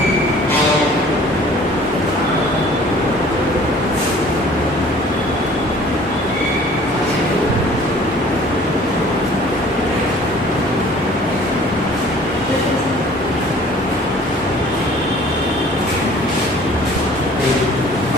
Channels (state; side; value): normal; both; correlation 0.51